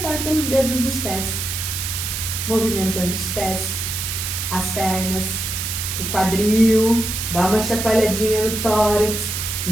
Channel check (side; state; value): right; noise; hiss, 3 dB below the sound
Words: pelos dedos dos pés. Movimentando os pés, as pernas, o quadril, dá uma chacoalhadinha no tórax,